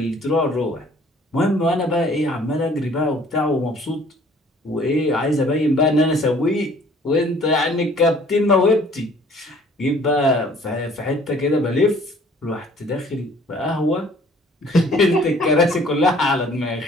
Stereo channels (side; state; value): both; normal; correlation 0.55